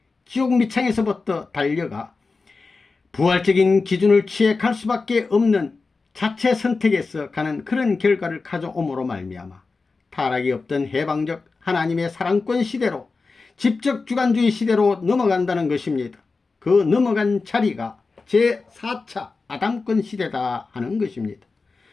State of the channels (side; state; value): right; quieter; 4.1 dB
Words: 지옥 밑창에서부터 달려가 부활적인 기준을 취해 갈 수밖에 없는 자체 선택에서 가는 그런 결과를 가져옴으로 말미암아 타락이 없던 해방적 하나님의 사랑권 시대로 집적 주관주의 시대로 넘어간다는 것입니다. 그 넘어간 자리가 제4차 아담권 시대다 하는 것입니다.